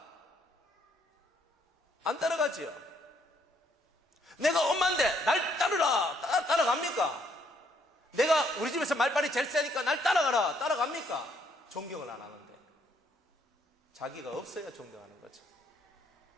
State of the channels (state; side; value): normal; both; correlation 0.70